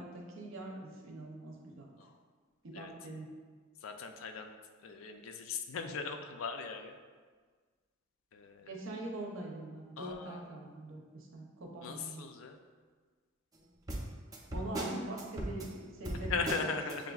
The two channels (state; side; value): normal; both; correlation 0.32